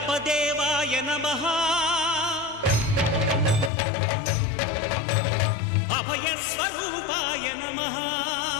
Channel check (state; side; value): drops out; right; at 3.7 s